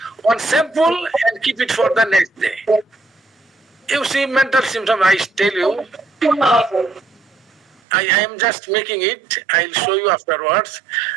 one sample and keep it for the next day. You see mental symptom, I tell you, I am just making it, I'll show you afterwards,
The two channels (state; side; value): drops out; left; at 7.8 s